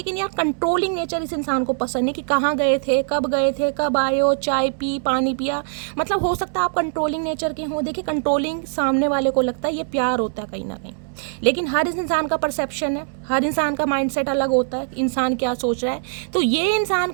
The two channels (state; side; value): silent; left; digital silence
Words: यार कंट्रोलिंग नेचर इस इंसान को पसंद नहीं, कि कहाँ गए थे, कब आए हो, चाय पी, पानी पिया, मतलब हो सकता है आप कंट्रोलिंग नेचर के हों। देखिए कंट्रोलिंग सामने वाले को लगता है ये प्यार होता है कहीं ना कहीं, लेकिन हर इंसान का परसेप्शन है, हर इंसान का माइंडसेट अलग होता है, इंसान क्या सोच रहा है। तो ये इंसान